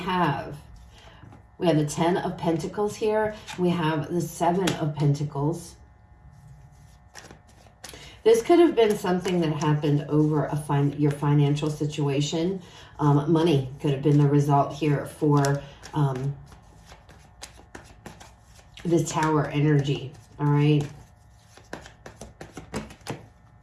the Ten of Pentacles here. We have the Seven of Pentacles. This could have been something that happened over your financial situation. Money could have been the result here for this Tower energy. All right.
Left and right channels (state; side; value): identical; both; correlation 1.00